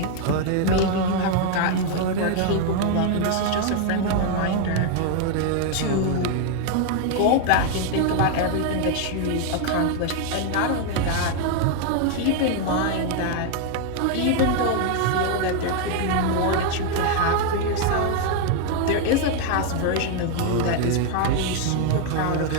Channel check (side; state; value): both; different; correlation 0.00